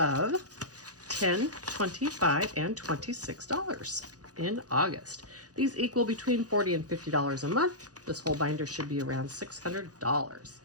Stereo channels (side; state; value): left; late; 0.68 ms